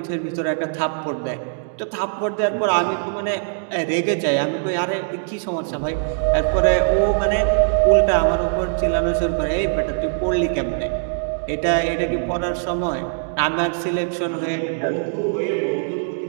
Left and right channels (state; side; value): silent; left; digital silence